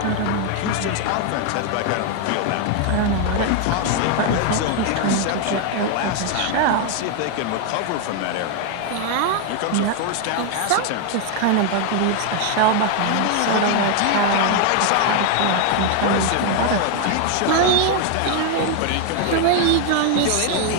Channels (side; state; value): both; different; correlation 0.00